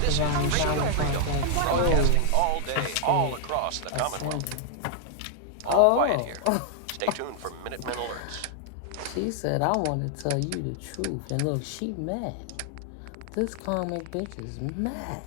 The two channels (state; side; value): different; both; correlation 0.00